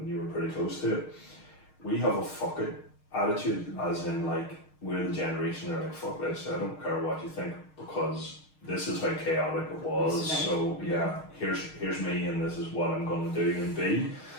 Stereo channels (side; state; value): right; late; 6.5 ms